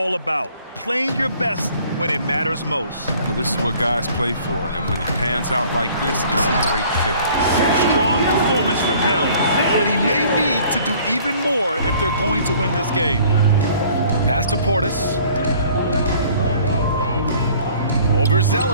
about. Playing your best when it matters most. Well, this is what guys play for, and when it pans out like this, it's a great fit. Strong performance from him, but he may need to do even more if they're going to win this game. Pass to Portis. Over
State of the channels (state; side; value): inverted; both; correlation -0.54